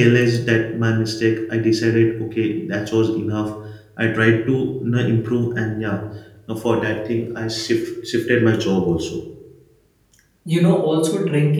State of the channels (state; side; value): identical; both; correlation 1.00